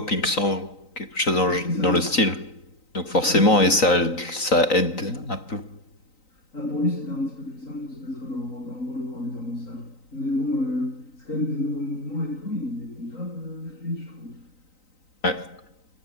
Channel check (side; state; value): right; late; 3.9 ms